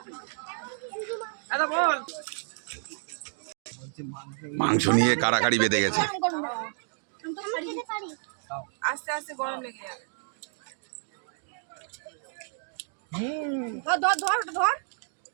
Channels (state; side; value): silent; left; digital silence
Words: মাংস নিয়ে কাড়াকাড়ি বেঁধে গেছে। আস্তে আস্তে গরম লেগে যাবে। ধর ধর ধর